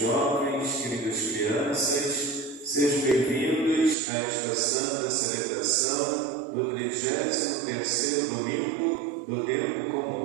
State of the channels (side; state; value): left; drops out; at 4.0 s